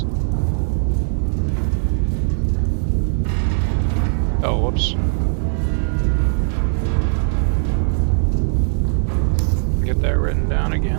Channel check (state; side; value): silent; left; digital silence